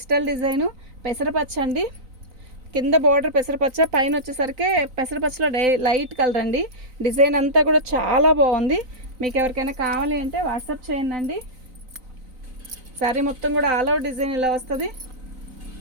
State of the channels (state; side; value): late; left; 3.9 ms